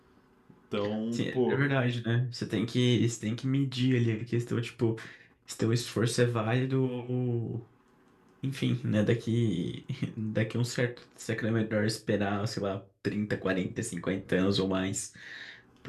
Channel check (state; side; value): identical; both; correlation 1.00